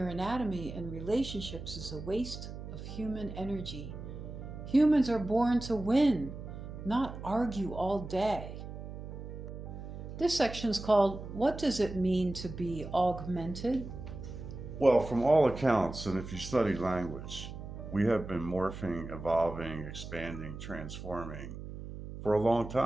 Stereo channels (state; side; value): noise; right; hum, 10 dB below the sound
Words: anatomy and relationships is a waste of human energy. Humans are born to win, not argue all day. This section is called, What Does It Mean to Be Augmented? Well, from all accounts, and if you study language, we have been morphing, evolving, expanding, transforming for a long